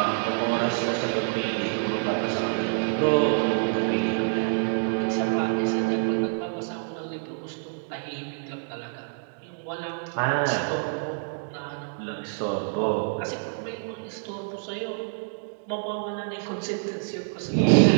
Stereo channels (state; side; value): silent; left; digital silence